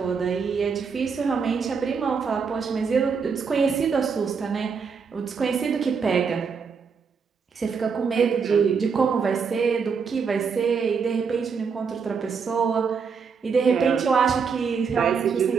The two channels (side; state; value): left; quieter; 5.8 dB